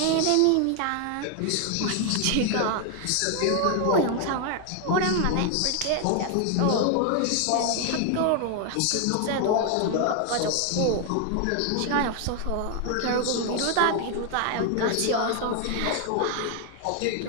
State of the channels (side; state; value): both; different; correlation 0.00